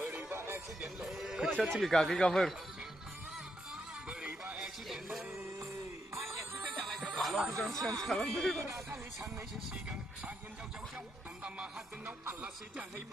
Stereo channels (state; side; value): normal; both; correlation 0.80